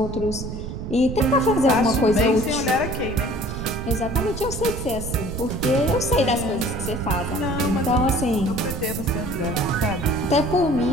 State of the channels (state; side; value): noise; right; rumble, 7 dB below the sound